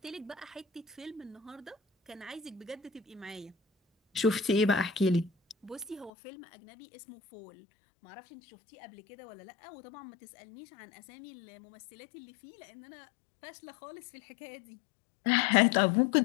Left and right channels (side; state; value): right; drops out; at 6.1 s